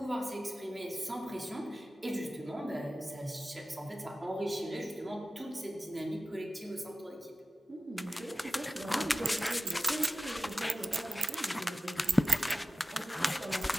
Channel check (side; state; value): both; normal; correlation 0.94